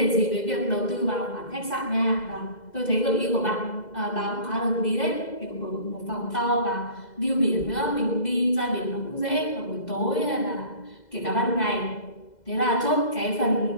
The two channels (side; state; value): right; late; 2.0 ms